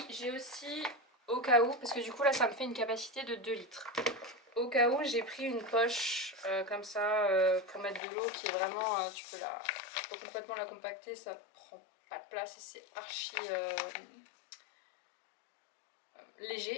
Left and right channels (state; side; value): drops out; right; at 8.0 s